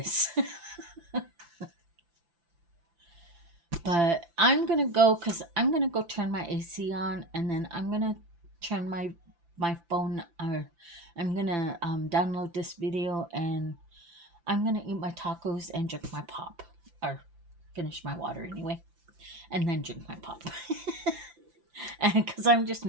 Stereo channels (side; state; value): left; late; 5.9 ms